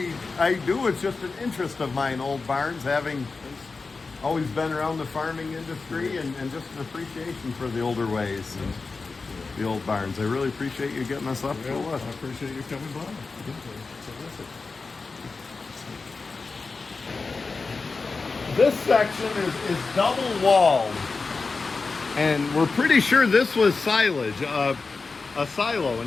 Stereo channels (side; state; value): right; quieter; 4.2 dB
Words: do. It's just an interest of mine, old barns, having always been around the farming industry, and just an appreciation for the older ways and the old barns. I really appreciate you getting us up to Well, look. I appreciate you coming by. This section is double walled, and we're pretty sure this was silage, a silo,